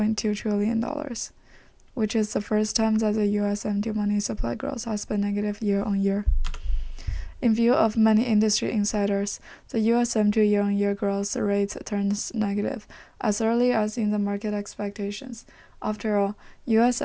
trillion, which is the first time that the U.S. M2 money supply growth has been negative year-on-year. In view of many industry insiders, the U.S. M2 year-on-year growth rate turns negative as early as in the market expectations. After all, U.S.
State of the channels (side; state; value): both; identical; correlation 1.00